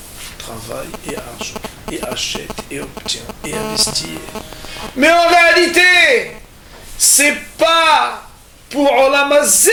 Travail et argent. Et achète et obtient et investit. Mais en réalité, c'est pas pour Olam Hazé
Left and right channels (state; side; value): identical; both; correlation 1.00